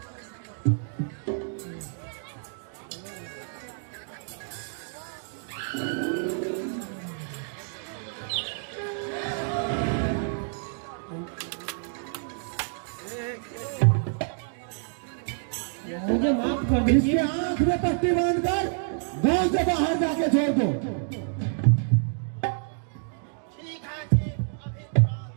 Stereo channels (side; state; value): left; silent; 59 dB below the other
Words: मुझे माफ कर इसके दीजिए। आंख में पट्टी बांधकर गांव से बाहर जाके छोड़ दो।